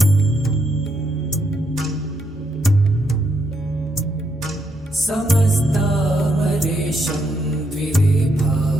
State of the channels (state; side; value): normal; both; correlation 0.77